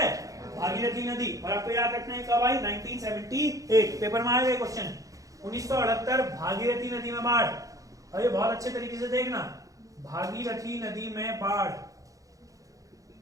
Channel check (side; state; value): left; late; 0.16 ms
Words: भागीरथी नदी। और आपको याद रखना है कब आई? 1978। पेपर में आए क्वेश्चन 1978 भागीरथी नदी में बाढ़। अरे बहुत अच्छे तरीके से देखना, भागीरथी नदी में बाढ़,